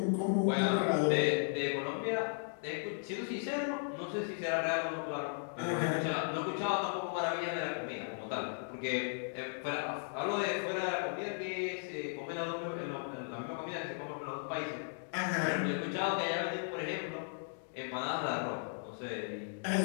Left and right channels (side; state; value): right; silent; digital silence